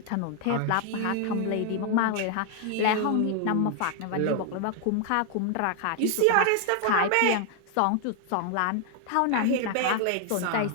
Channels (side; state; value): both; different; correlation 0.00